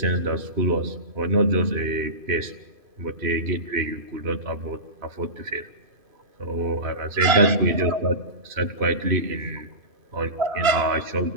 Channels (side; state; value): left; late; 2.5 ms